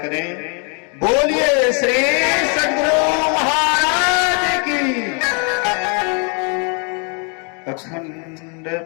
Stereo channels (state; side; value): quieter; right; 38.1 dB